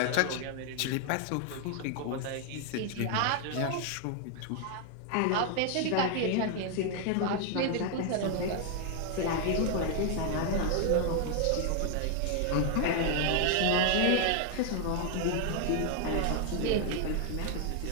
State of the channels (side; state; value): both; different; correlation 0.00